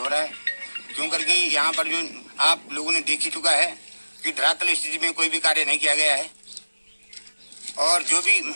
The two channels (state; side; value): inverted; both; correlation -1.00